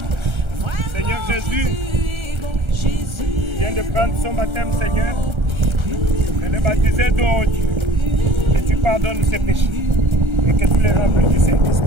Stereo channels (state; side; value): late; left; 1.3 ms